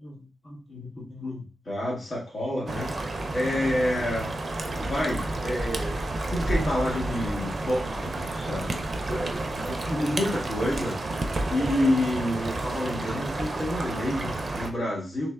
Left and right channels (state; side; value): normal; both; correlation 0.89